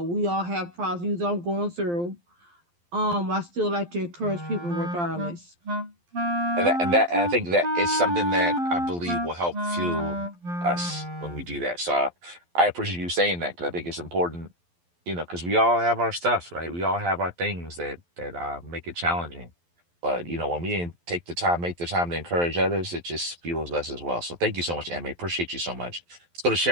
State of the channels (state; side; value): late; left; 12 ms